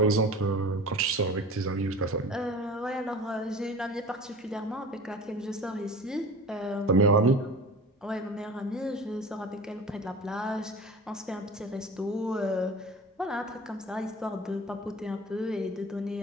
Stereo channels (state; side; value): normal; both; correlation 0.37